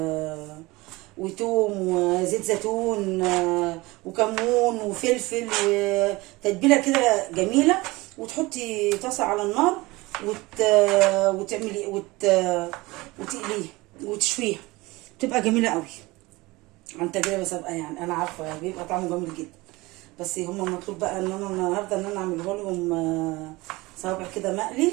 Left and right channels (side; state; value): left; quieter; 21.8 dB